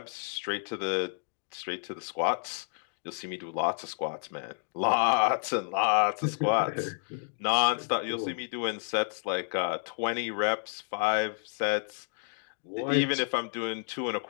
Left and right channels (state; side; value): silent; right; digital silence